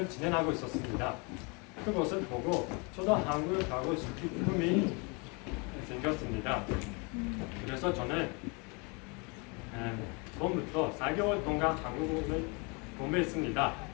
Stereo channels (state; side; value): quieter; right; 31.2 dB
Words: 진행하고 있었습니다. 그것을 보고 저도 한국에 가고 싶은 꿈이 생겼습니다. 그래서 저는 처음부터 4개월 동안 한국어를 공부했습니다.